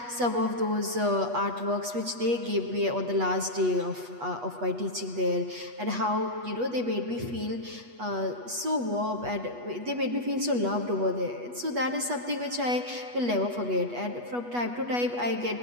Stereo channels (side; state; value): left; late; 8.3 ms